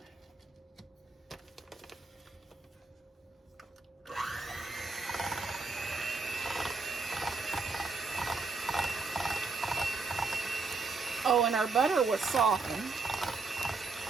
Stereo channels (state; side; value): quieter; left; 4.1 dB